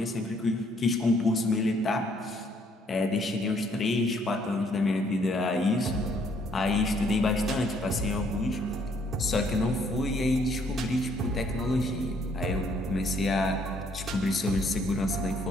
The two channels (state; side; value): normal; both; correlation 0.66